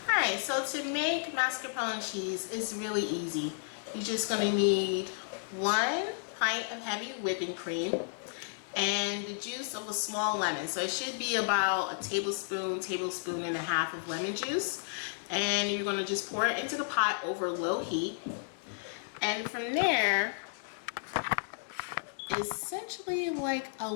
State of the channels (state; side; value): silent; right; digital silence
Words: Alright, so to make mascarpone cheese is really easy. You're just going to need 1 pint of heavy whipping cream and the juice of a small lemon. So it should be about a tablespoon and a half of lemon juice. And you're going to just pour it into the pot over low heat. And from there, essentially like a